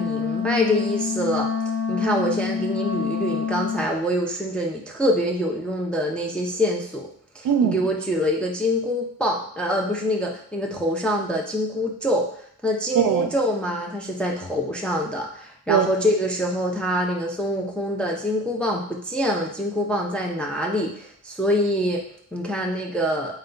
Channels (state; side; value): normal; both; correlation 0.44